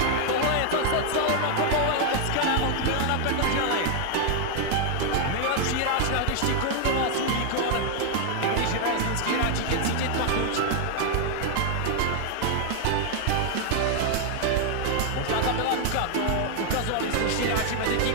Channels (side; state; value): both; different; correlation 0.00